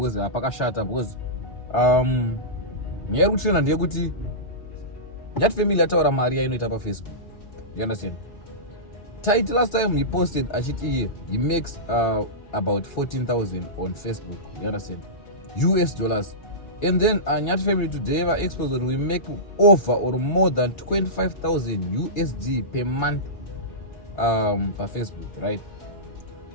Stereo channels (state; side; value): late; right; 4.8 ms